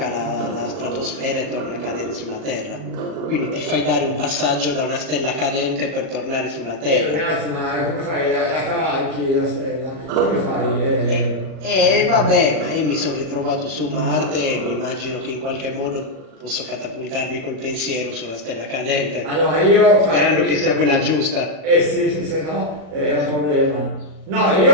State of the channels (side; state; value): left; late; 37 ms